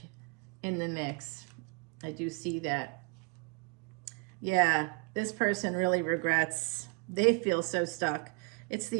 in the mix. I do see that. Yeah, this person really regrets. They feel so stuck. It's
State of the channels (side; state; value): left; quieter; 32.4 dB